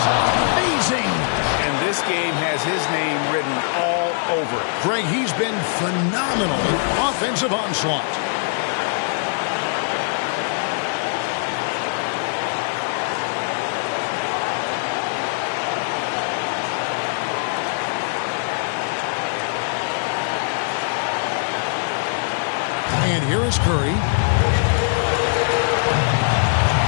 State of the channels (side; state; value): right; silent; 58 dB below the other